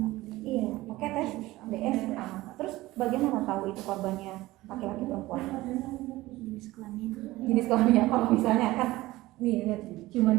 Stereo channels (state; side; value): quieter; left; 18.2 dB